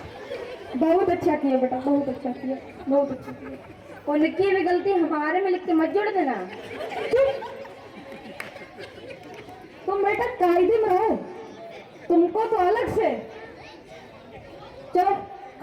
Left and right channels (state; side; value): identical; both; correlation 1.00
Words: बहुत अच्छा किया बेटा, बहुत अच्छा किया, बहुत अच्छा किया। और लिखी हुई गलती हमारे में लिख के मत जोड़ देना। तुम बेटा कायदे में रहो, तुमको तो अलग से। चलो